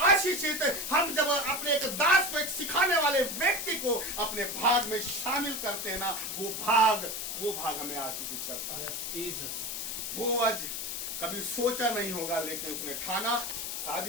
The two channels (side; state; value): left; noise; hiss, 4 dB below the sound